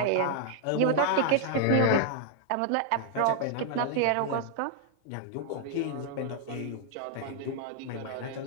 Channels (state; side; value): different; both; correlation 0.00